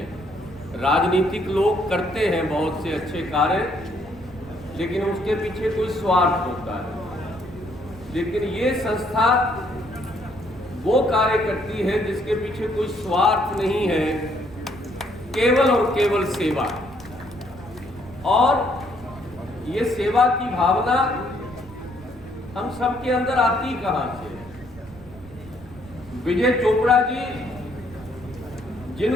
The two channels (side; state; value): right; noise; rumble, 20 dB below the sound